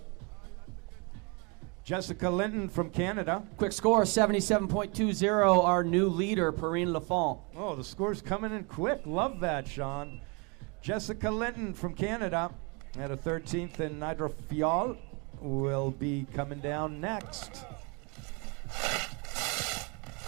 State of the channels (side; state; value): left; quieter; 31.5 dB